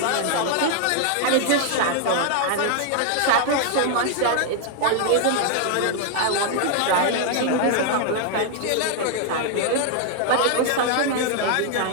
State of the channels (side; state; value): both; different; correlation 0.00